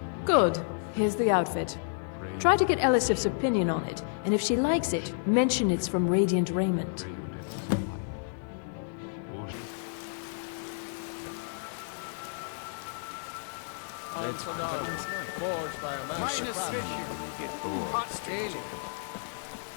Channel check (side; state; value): right; silent; digital silence